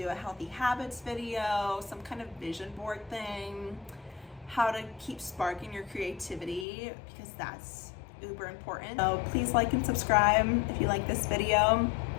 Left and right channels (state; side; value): drops out; right; at 6.7 s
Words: a healthy habits video, some kind of vision board thing, how to keep sparking your creativity, because that's uber important. So please like and subscribe if you like this video.